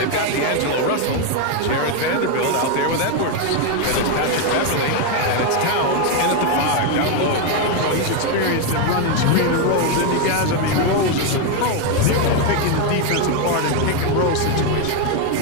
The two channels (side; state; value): both; different; correlation 0.02